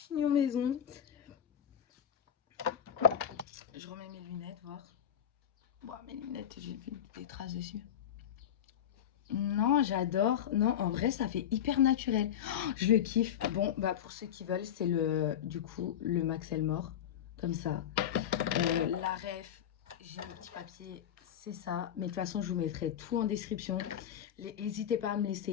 maison. Je remets mes lunettes, voir. Bon, mes lunettes, j'ai vu des traces dessus. Non, j'adore. Non, en vrai, ça fait hyper naturel. Oh, je le kiffe. Bon, bah pour ceux qui veulent, c'est du coup, le Max Elmore. Comme ça. La ref, j'ai un petit papier, c'est ça. Mais de toute façon, je vous mettrai tout en description. N'hésitez pas à me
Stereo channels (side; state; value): right; quieter; 9.6 dB